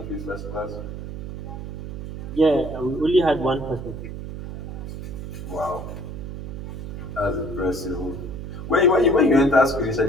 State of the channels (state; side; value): noise; right; hum, 8 dB below the sound